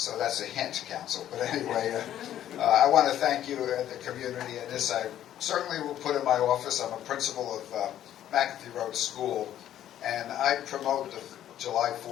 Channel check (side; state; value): right; quieter; 11.6 dB